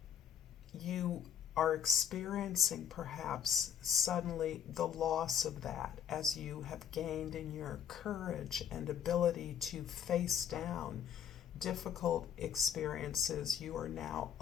You are experiencing perhaps suddenly the loss of that as you have gained in your courage and ability to face down difficult experiences. You are now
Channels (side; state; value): right; quieter; 8.9 dB